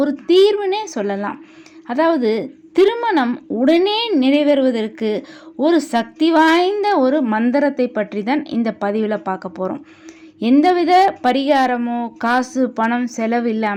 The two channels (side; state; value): both; identical; correlation 1.00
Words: ஒரு தீர்வுனே சொல்லலாம். அதாவது திருமணம் உடனே நிறைவேறுவதற்கு ஒரு சக்தி வாய்ந்த ஒரு மந்திரத்தை பற்றி தான் இந்த பதிவில் பார்க்க போகிறோம். எந்தவித பரிகாரமோ காசு பணம் செலவு